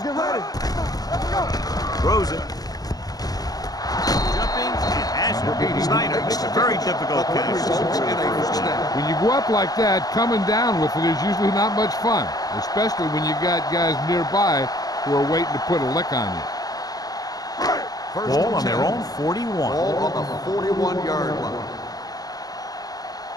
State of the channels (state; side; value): late; right; 0.18 ms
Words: get ready. Let's go. Throws it. Jumping and has it. Snyder makes a very difficult catch. When you go up like that, coming down with it is usually not much fun, especially when you got guys nearby who are waiting to put a lick on you. Ball on their own 41. Ball on the 41-yard line.